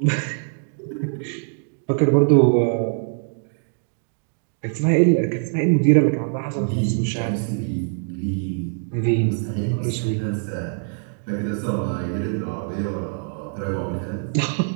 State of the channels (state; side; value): silent; left; 62 dB below the other